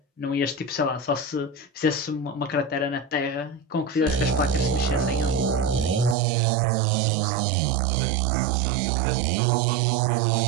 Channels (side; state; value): left; drops out; at 6.2 s